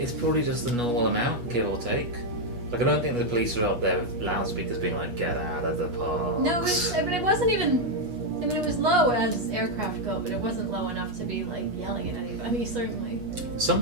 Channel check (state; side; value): late; left; 8.3 ms